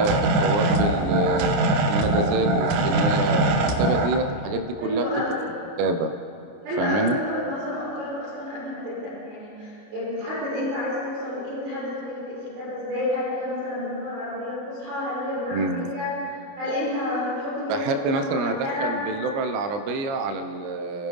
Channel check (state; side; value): late; left; 29 ms